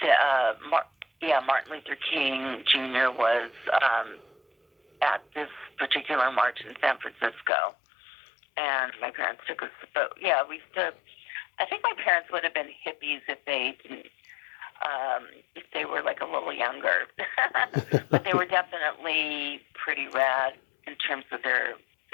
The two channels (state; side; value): drops out; right; at 7.5 s